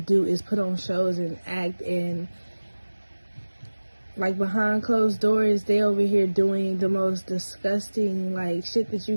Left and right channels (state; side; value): inverted; both; correlation -1.00